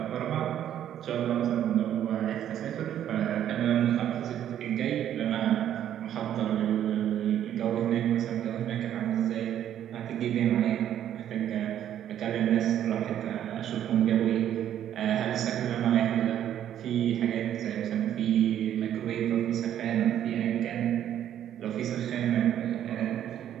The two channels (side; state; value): left; quieter; 10.6 dB